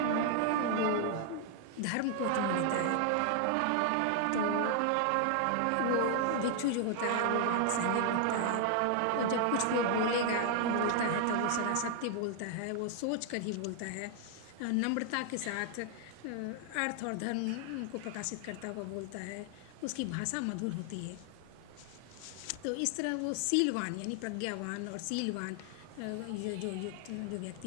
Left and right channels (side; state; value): both; different; correlation 0.00